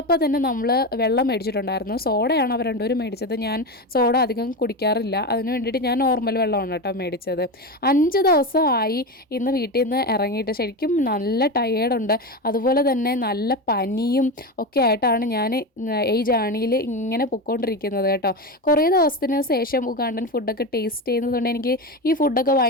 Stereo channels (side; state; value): both; normal; correlation 0.19